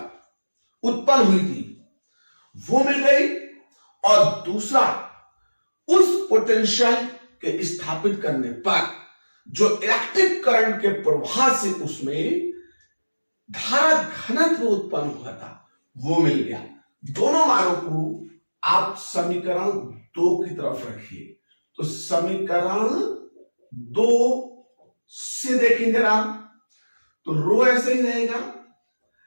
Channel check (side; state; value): both; inverted; correlation -1.00